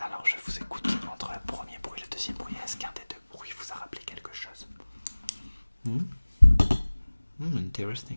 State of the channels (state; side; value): inverted; both; correlation -1.00